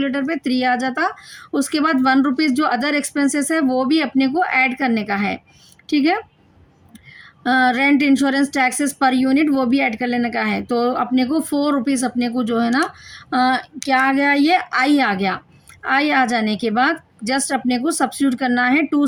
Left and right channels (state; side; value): identical; both; correlation 1.00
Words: पे, 3 आ जाता। उसके बाद 1 रुपीज़ जो अदर एक्सपेंसेस है वो भी अपने को ऐड करने का है। ठीक है, rent, insurance, taxes per unit वो भी ऐड कर लेने का है। तो अपने को 4 रुपीज़ अपने को जो है ना क्या आ गया, ये आई आ गया। आई आ जाने के बाद जस्ट अपने को सब्स्टिट्यूट करना है